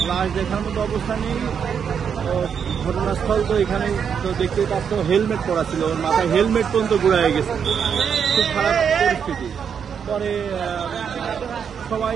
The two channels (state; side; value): quieter; left; 7.3 dB